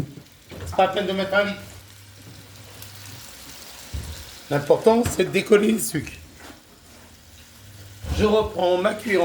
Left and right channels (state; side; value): identical; both; correlation 1.00